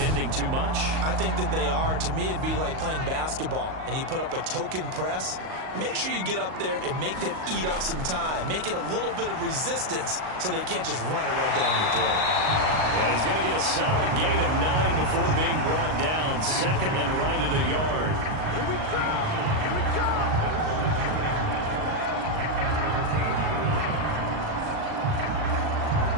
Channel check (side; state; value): left; late; 38 ms